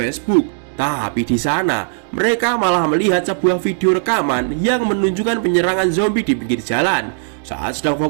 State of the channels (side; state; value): left; silent; digital silence